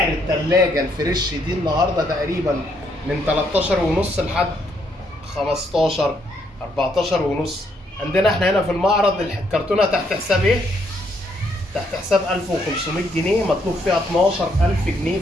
التلاجة الفريش دي النهاردة تقريبا من 13 ونص لحد 15 14 ونص. عندنا احنا هنا في المعرض الكرتونة تحت حساب ايه؟ تحت حساب 1500 جنيه. مطلوب فيها 12000 جنيه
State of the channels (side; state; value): both; normal; correlation 0.72